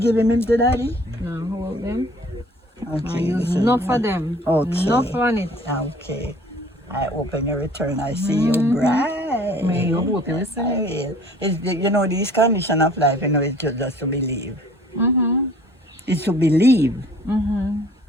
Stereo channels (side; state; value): both; normal; correlation 0.52